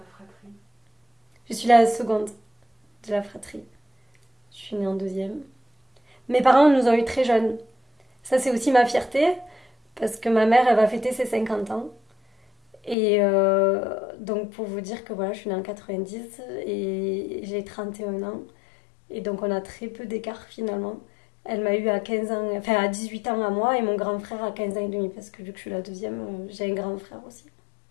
fratrie? Je suis la seconde de la fratrie. Je suis née en deuxième. Mes parents nous ont eu très jeunes. Ça, c'est aussi ma fierté, parce que ma mère, elle va fêter ses 50 ans. Et donc, pour vous dire que voilà, je suis née en 90 et j'ai 31 ans. Et donc, on a très peu d'écart finalement. Elle m'a eu à 15 ans, enfin à 18 ans à moi, et mon grand frère à 15 ans et demi, parce que vu que je suis la deuxième, j'ai un grand frère aussi.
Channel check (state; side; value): drops out; right; at 13.0 s